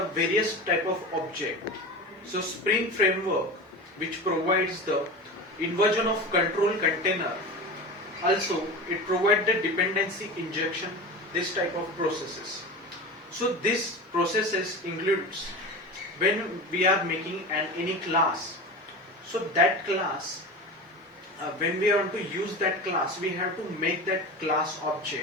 various type of object. So Spring framework, which provides the inversion of control container, also it provides the dependency injection, this type of processes. So this processes includes when we are making any class. So that class, when we want to use that class, we have to make that class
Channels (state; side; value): normal; both; correlation 0.29